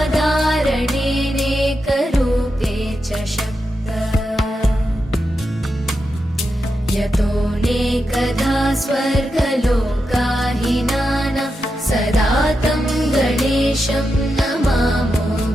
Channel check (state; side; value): normal; both; correlation 0.87